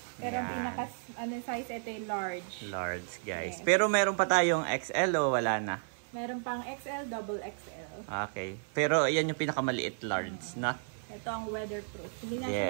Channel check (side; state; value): left; silent; 56 dB below the other